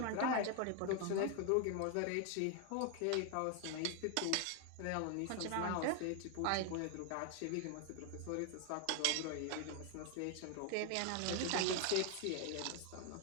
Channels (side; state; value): both; different; correlation 0.01